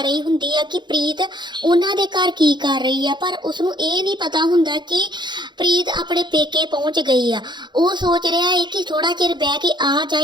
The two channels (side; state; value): left; late; 0.22 ms